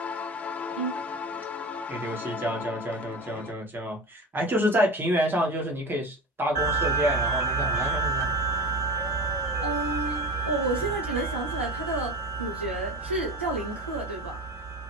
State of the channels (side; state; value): both; normal; correlation 0.30